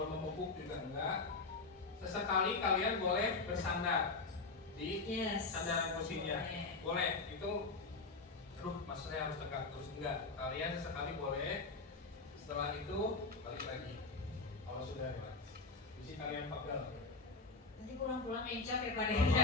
membungkuk juga enggak. Sesekali kalian boleh bersandar di sandaran kursinya, boleh. Itu, aduh, masa saya harus tegak terus, enggak. Kalian sesekali boleh. Setelah itu balik lagi. Kalau sudah relax, isi kalian pegel. Nanti pulang-pulang encok ya Pak Kalau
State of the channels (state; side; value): quieter; right; 3.8 dB